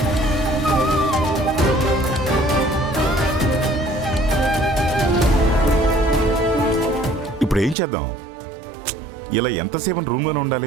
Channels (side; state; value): left; drops out; at 7.8 s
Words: ఇప్పుడు ఏం చేద్దాం? ఇలా ఎంతసేపు రూమ్లోనే